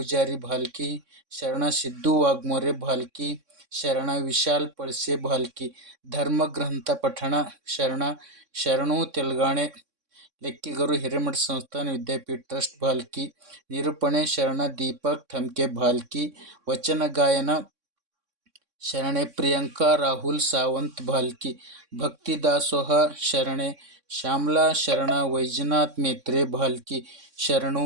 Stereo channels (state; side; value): late; left; 3.6 ms